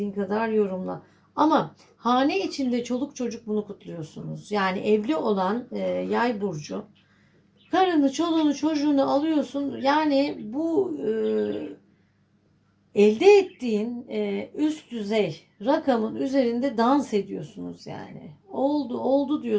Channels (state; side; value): identical; both; correlation 1.00